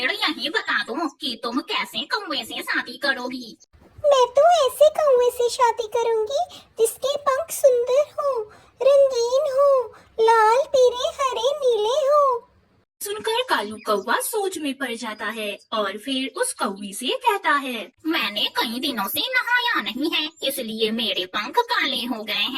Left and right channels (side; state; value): both; identical; correlation 1.00